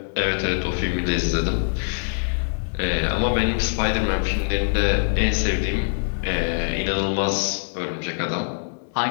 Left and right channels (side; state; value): right; silent; digital silence